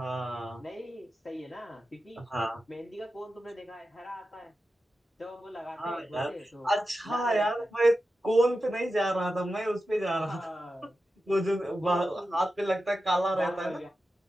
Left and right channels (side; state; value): both; normal; correlation 0.91